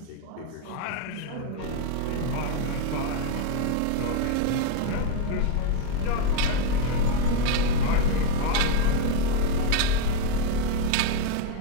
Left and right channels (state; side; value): different; both; correlation 0.01